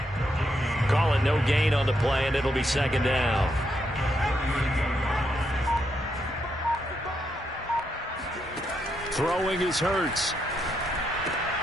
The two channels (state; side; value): normal; both; correlation 0.79